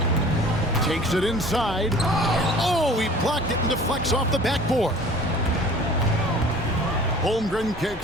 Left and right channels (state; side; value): normal; both; correlation 0.47